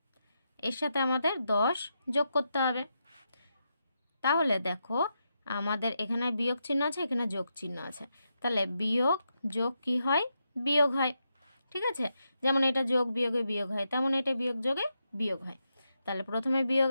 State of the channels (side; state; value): both; inverted; correlation -0.85